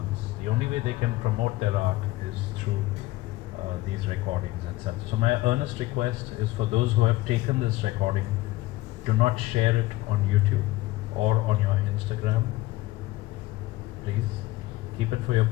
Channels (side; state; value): right; quieter; 18.4 dB